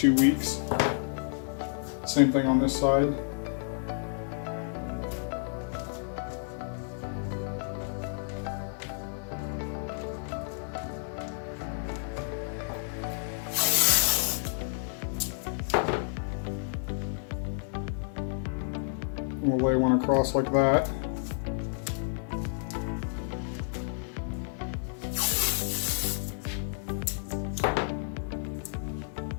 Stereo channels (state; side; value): silent; right; digital silence